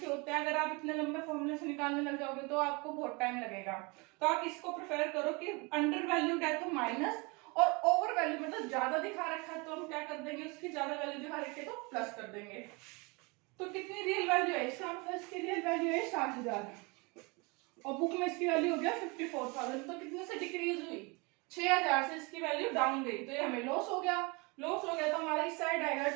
होते हैं। अगर आप इतने लंबे फॉर्मूले से निकालने लग जाओगे तो आपको बहुत टाइम लगेगा। तो आप इसको प्रेफर करो कि अंडर वैल्यूड है तो माइनस, और ओवर वैल्यू मतलब ज्यादा दिखा रखा है तो हम क्या कर देंगे, उसकी ज्यादा वैल्यू दिखा रखी है तो प्लस कर देंगे। तो कितनी रियल वैल्यू है इसका, मतलब इसकी रियल वैल्यू है 60,000 और बुक में इसकी वैल्यू हो गया 54,000। तो कितने से डिक्रीज हुई, 6,000 से इसकी वैल्यू डाउन गई, तो ये हमें लॉस हो गया। लॉस हो गया तो हमारा इस साइड आएगा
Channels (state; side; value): quieter; left; 28.3 dB